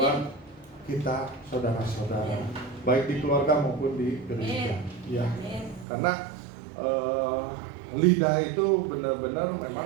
kita, saudara-saudara, baik di keluarga maupun di gereja, ya. Karena lidah itu benar-benar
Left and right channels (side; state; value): left; drops out; at 5.9 s